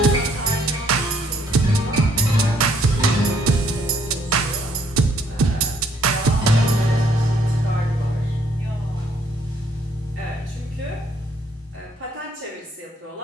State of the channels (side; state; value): both; normal; correlation 0.66